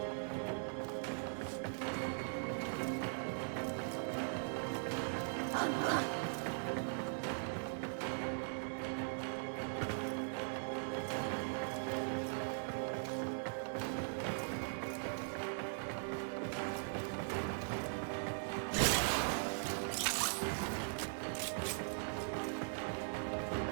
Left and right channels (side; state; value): left; silent; digital silence